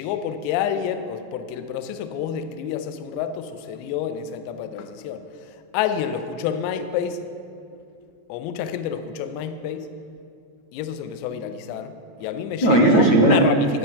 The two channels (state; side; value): late; right; 9.1 ms